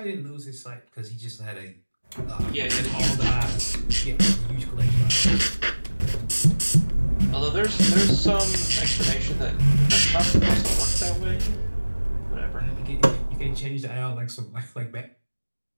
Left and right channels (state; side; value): inverted; both; correlation -1.00